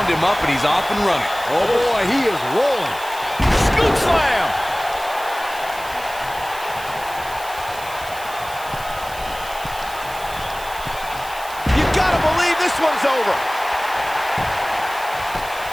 him up and he's off and running. Oh, boy, he is rolling. Scoop slam! You gotta believe this one's over.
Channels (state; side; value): noise; right; hiss, 16 dB below the sound